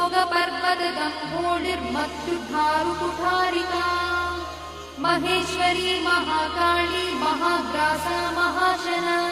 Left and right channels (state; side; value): identical; both; correlation 1.00